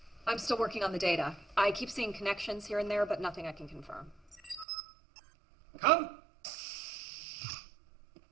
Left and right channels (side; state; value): left; drops out; at 4.7 s